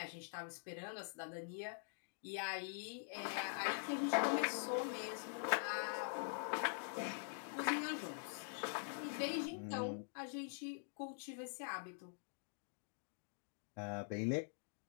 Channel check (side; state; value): right; silent; digital silence